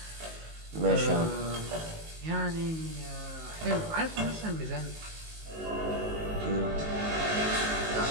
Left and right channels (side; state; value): left; late; 19 ms